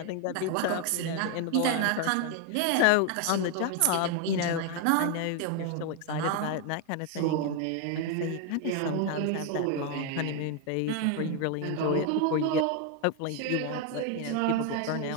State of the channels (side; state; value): both; different; correlation 0.01